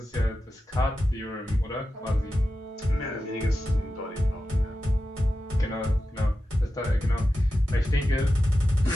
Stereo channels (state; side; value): normal; both; correlation 0.92